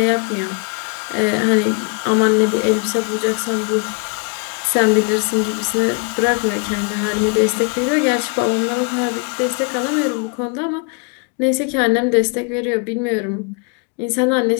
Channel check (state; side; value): quieter; right; 35.7 dB